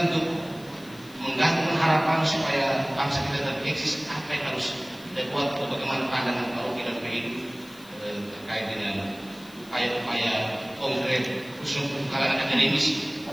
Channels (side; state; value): left; noise; hiss, 23 dB below the sound